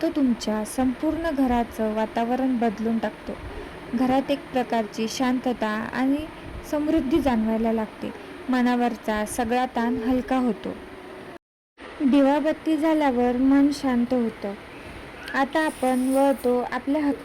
तुमच्या संपूर्ण घराचं वातावरण बदलून टाकतो. घरात एक प्रकारची शांतता आणि समृद्धी जाणवायला लागते. मनावरचा सगळा ताण हलका होतो. दिवाबत्ती झाल्यावर मन शांत होतं. आता आपण वळतो आपल्या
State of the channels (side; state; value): both; identical; correlation 1.00